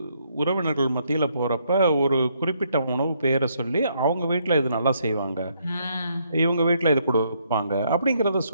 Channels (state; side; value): inverted; both; correlation -0.72